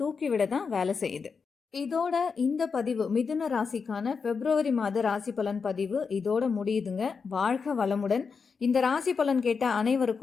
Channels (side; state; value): right; quieter; 5.4 dB